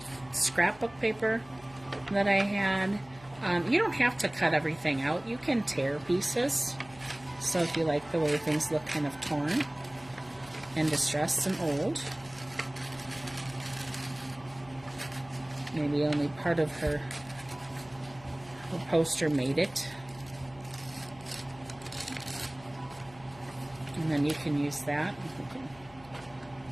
scrapbook paper that I had. You don't have to cut everything out. You can tear pieces. So if you like the way things look kind of torn and distressed and old, maybe only part of her poster made it. And then you can use that. You can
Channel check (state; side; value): noise; left; hum, 23 dB below the sound